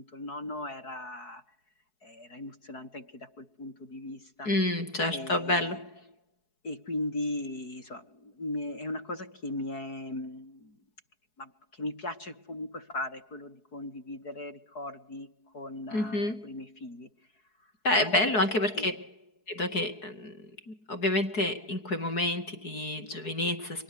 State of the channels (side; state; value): right; late; 4.7 ms